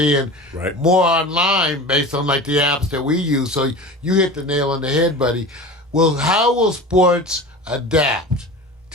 more online based on like the apps that we use. So you hit the nail on the head, buddy. Well, how will sports adapt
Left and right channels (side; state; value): both; normal; correlation 0.34